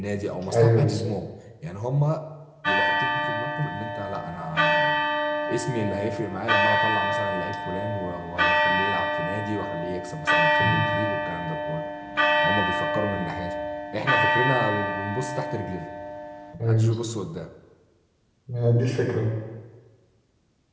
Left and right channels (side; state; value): both; identical; correlation 1.00